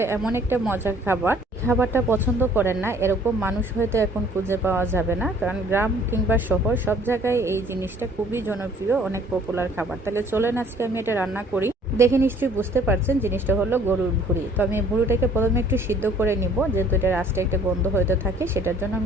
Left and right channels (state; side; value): normal; both; correlation 0.57